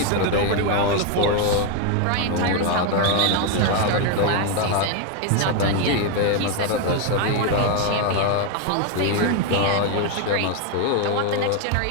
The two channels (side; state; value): both; different; correlation 0.01